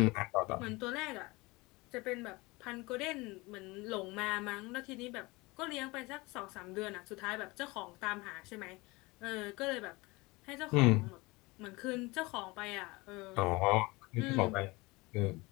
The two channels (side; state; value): right; quieter; 23.5 dB